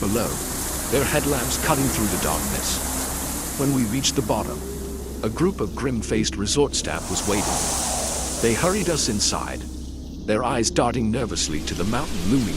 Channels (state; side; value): identical; both; correlation 1.00